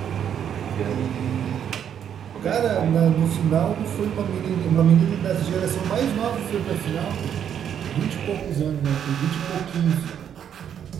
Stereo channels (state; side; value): quieter; left; 8.9 dB